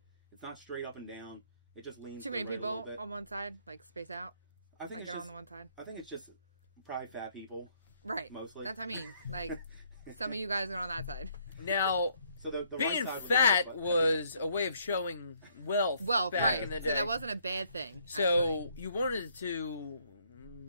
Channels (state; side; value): inverted; both; correlation -0.68